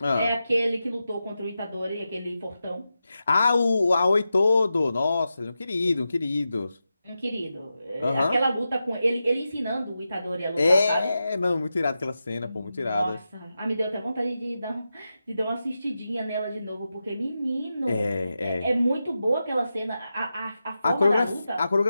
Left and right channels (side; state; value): both; inverted; correlation -0.90